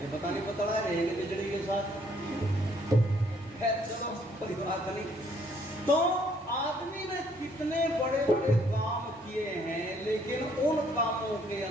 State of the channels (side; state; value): both; normal; correlation 0.65